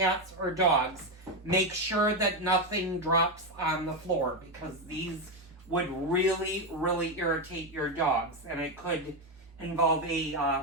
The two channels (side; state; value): both; normal; correlation 0.09